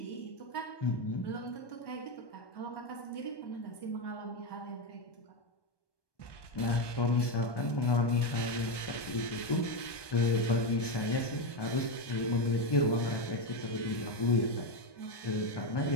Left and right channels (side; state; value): right; late; 1.2 ms